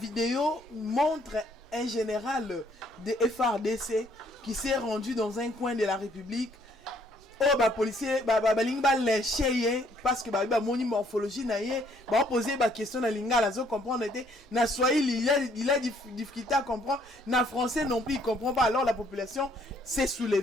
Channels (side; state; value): both; normal; correlation 0.65